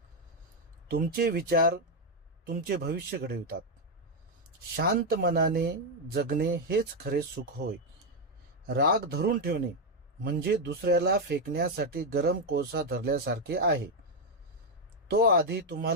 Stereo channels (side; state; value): both; normal; correlation 0.03